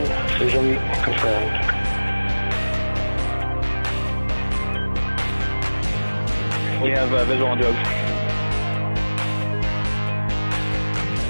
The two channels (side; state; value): both; inverted; correlation -1.00